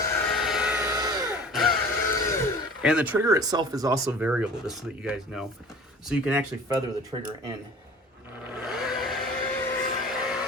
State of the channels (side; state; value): both; normal; correlation 0.44